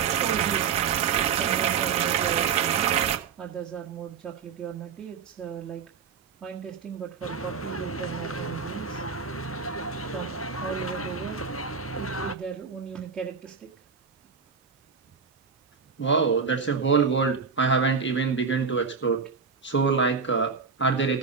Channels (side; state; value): left; quieter; 5.8 dB